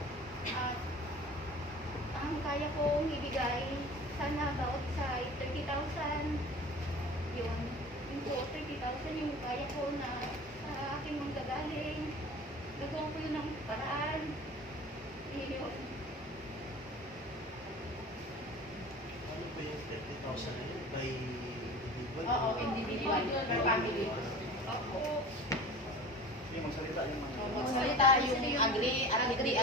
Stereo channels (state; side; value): normal; both; correlation 0.39